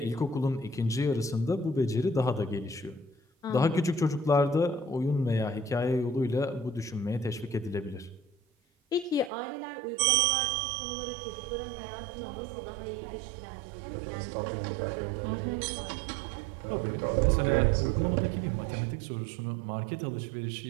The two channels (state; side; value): drops out; left; at 9.3 s